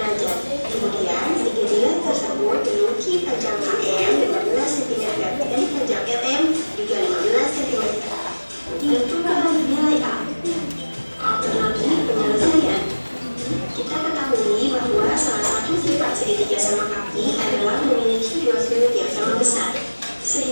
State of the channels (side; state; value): both; inverted; correlation -1.00